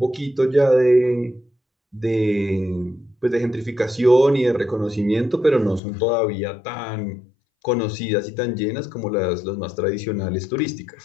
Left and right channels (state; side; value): drops out; right; at 5.8 s